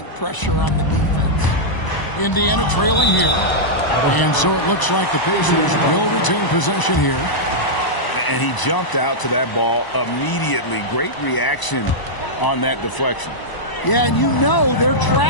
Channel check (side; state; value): right; late; 1.0 ms